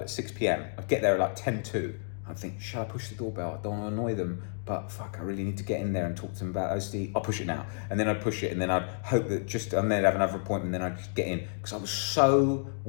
at 6 p.m. I'd get there at like 10:02. I'd think, should I push the doorbell? I don't want to annoy them, but fuck, I really need to get in there and talk to them about OCD. I'll push it now. And then I'd push it, and then I'd hope that and then I'd have another appointment, and then I'd just get in, because I was so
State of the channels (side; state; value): right; silent; digital silence